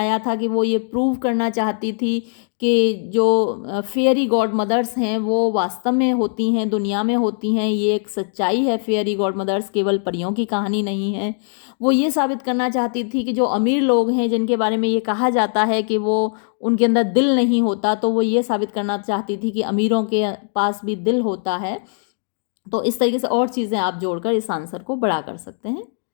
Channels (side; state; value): right; silent; 66 dB below the other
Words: था कि वो ये प्रूव करना चाहती थी कि जो फेयरी गॉड मदर्स हैं वो वास्तव में होती हैं, दुनिया में होती हैं, ये एक सच्चाई है, फेयरी गॉड मदर्स केवल परियों की कहानी नहीं है। वो ये साबित करना चाहती थी कि जो अमीर लोग हैं जिनके बारे में ये कहा जाता है कि वो उनके अंदर दिल नहीं होता, तो वो ये साबित करना चाहती थी कि अमीरों के पास भी दिल होता है। तो इस तरीके से और चीज़ें आप जोड़कर इस आंसर को बड़ा कर सकते हैं।